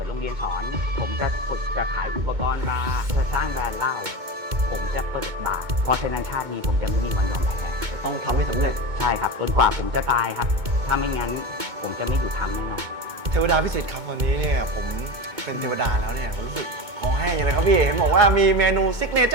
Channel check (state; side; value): late; left; 2.2 ms